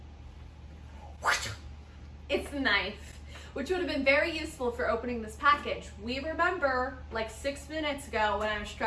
it's the knife, which would have been very useful for opening this package. We remember like 6 minutes ago when I was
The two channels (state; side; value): identical; both; correlation 1.00